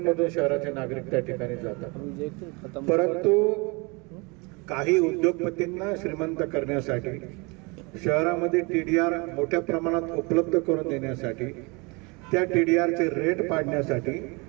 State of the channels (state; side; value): quieter; left; 28.4 dB